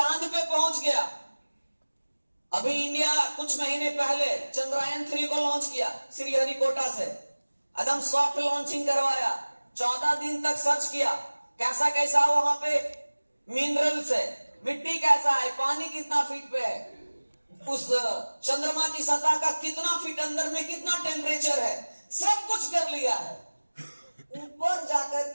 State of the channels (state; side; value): inverted; both; correlation -1.00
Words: पे पहुंच गया। अभी इंडिया कुछ महीने पहले चंद्रयान 3 को लॉन्च किया श्रीहरिकोटा से, एकदम सॉफ्ट लॉन्चिंग करवाया। 14 दिन तक सर्च किया कैसा कैसा वहां पे मिनरल्स है, मिट्टी कैसा है, पानी कितना फीट पे है, उस चंद्रमा की सतह का कितना फीट अंदर में कितना टेम्परेचर है, सब कुछ कर लिया है। ऊपर जाकर